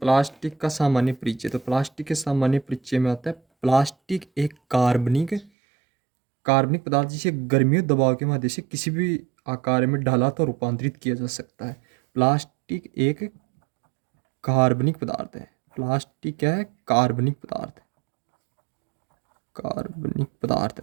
का सामान्य परिचय। तो प्लास्टिक के सामान्य परिचय में आता है प्लास्टिक एक कार्बनिक पदार्थ जिसे गर्मी और दबाव के माध्यम से किसी भी आकार में ढाला तो रूपांतरित किया जा सकता है। प्लास्टिक एक कार्बनिक पदार्थ है। प्लास्टिक क्या है? कार्बनिक पदार्थ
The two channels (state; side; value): drops out; left; at 5.5 s